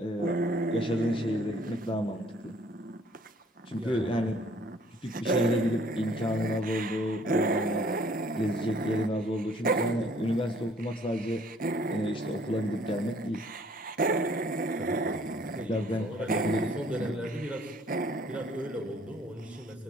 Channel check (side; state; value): both; normal; correlation 0.59